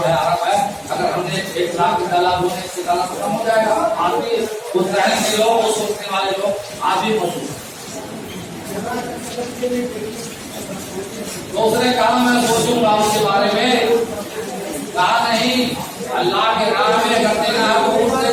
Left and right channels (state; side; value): identical; both; correlation 1.00